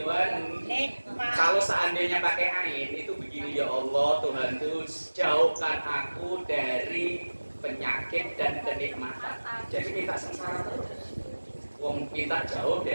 wan nikmah. Kalau seandainya pakai ain itu begini, ya Allah Tuhanku jauhkan aku dari penyakit dan kenikmatan. Jadi kita sengsara terus. Wong kita jauh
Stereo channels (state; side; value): inverted; both; correlation -1.00